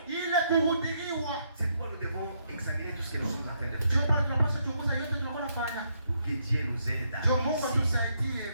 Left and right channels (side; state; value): both; inverted; correlation -0.75